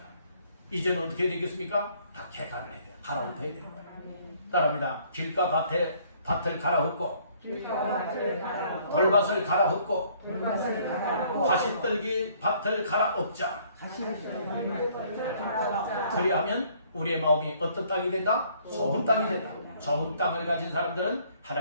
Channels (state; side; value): inverted; both; correlation -0.61